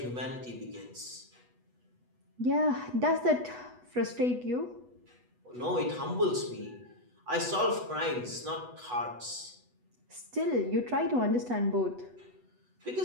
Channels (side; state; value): left; late; 8.1 ms